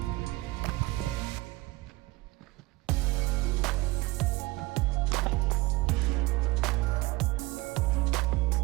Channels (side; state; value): left; quieter; 20.9 dB